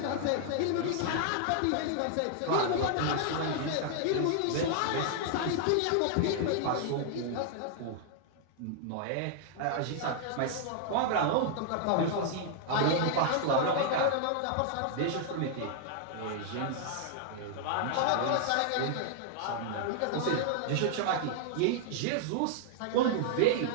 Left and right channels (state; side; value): different; both; correlation -0.01